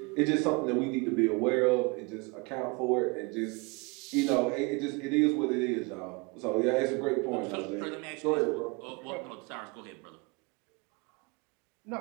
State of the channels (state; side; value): quieter; left; 28.8 dB